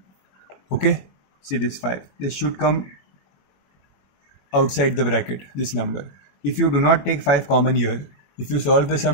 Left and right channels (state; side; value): late; right; 21 ms